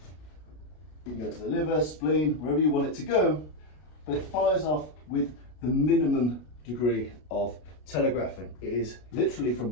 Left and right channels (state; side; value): late; right; 33 ms